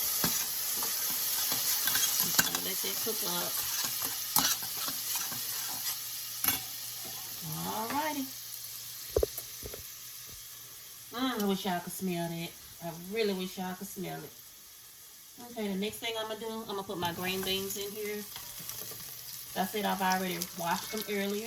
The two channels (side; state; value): both; identical; correlation 1.00